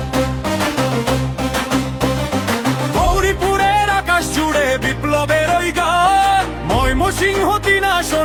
গৌরীপুরের আকাশ জুড়ে বিপ্লবের ওই গান, ময়মনসিংহ ৩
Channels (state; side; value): identical; both; correlation 1.00